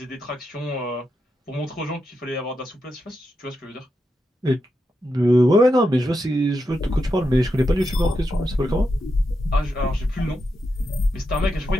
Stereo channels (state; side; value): normal; both; correlation 0.86